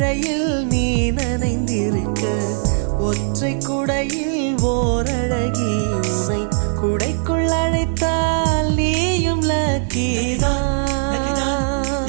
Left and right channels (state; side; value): silent; left; digital silence